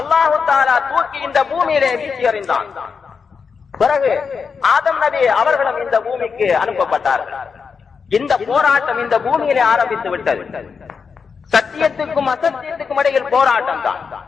தஆலா தூக்கி இந்த பூமியிலே வீசி எறிந்தான். பிறகு ஆதம் நபி அவர்களும் இந்த பூமிக்கு அனுப்பப்பட்டார்கள். இந்த போராட்டம் இந்த பூமியிலே ஆரம்பித்து விட்டது. சத்தியத்துக்கும் அசத்தியத்துக்கும் இடையில் போராட்டம் தான்.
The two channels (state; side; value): quieter; right; 5.6 dB